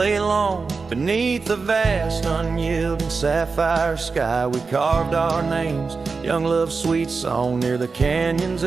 long, beneath the vast unyielding sapphire sky, we carved our names, young love's sweet song, near the canyon's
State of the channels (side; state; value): left; quieter; 4.6 dB